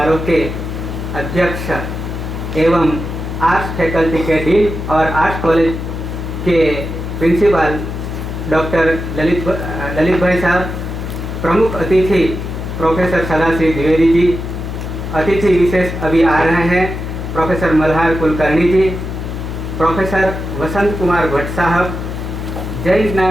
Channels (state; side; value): noise; left; hum, 6 dB below the sound